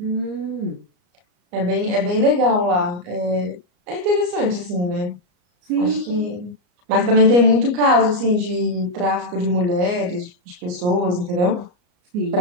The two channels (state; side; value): late; left; 34 ms